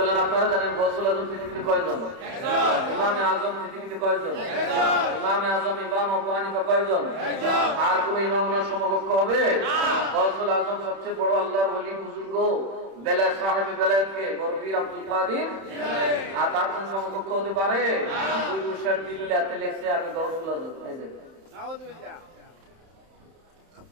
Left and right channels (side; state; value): left; late; 31 ms